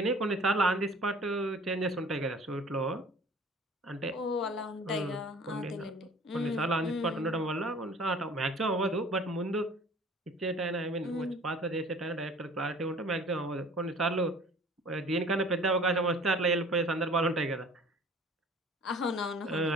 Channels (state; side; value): normal; both; correlation 0.48